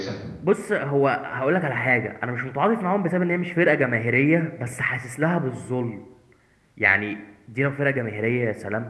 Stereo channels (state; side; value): identical; both; correlation 1.00